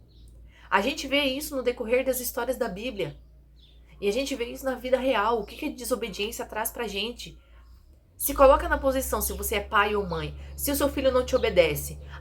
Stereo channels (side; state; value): both; identical; correlation 1.00